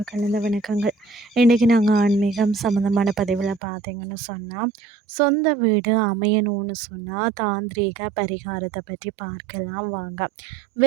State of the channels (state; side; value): drops out; left; at 3.6 s